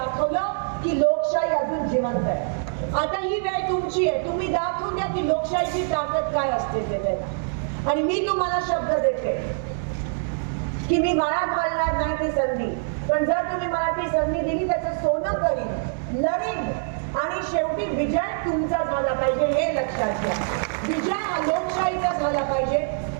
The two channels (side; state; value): left; silent; digital silence